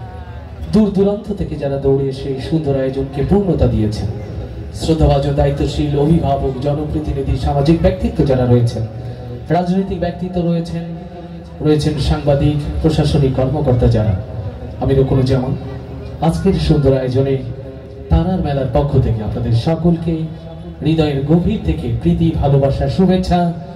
দূর দূরান্ত থেকে যারা দৌড়ে এসে এই সুন্দর আয়োজনকে পূর্ণতা দিয়েছেন, শ্রদ্ধাভাজন, দায়িত্বশীল অভিভাবক, জনপ্রতিনিধি, সামাজিক ব্যক্তিত্ব যারা রয়েছেন, রাজনৈতিক ব্যক্তিত্ব রয়েছেন সাংবাদিক, প্রশাসনিক কর্মকর্তা যারা, আমি রুকনুজ্জামান আজকের সুন্দর আয়োজনে তারার মেলার পক্ষ থেকে আপনাদের সকলকে হৃদয়ের গভীর থেকে প্রীতি, ভালোবাসা, শুভেচ্ছা।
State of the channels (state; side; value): identical; both; correlation 1.00